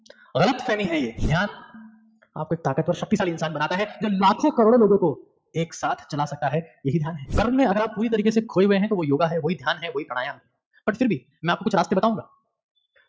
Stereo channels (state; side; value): identical; both; correlation 1.00